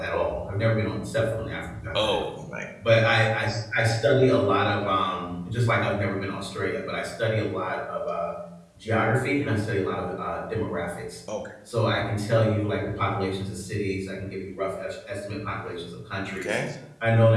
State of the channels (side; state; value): both; identical; correlation 1.00